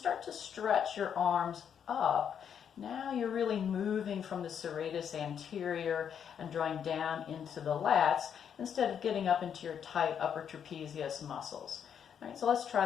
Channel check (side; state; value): right; quieter; 8.1 dB